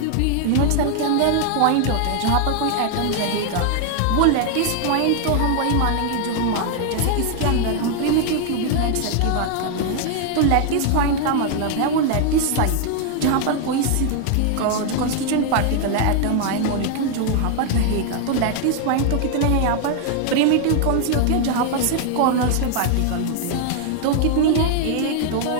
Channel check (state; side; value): different; both; correlation 0.00